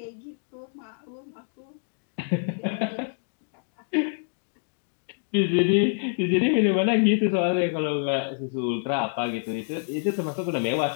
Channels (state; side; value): silent; right; digital silence